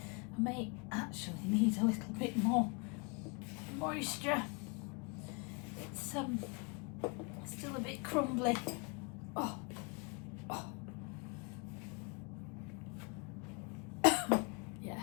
I may actually need a little bit more moisture. It's still a bit crumbly. Oh.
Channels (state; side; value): quieter; right; 31.0 dB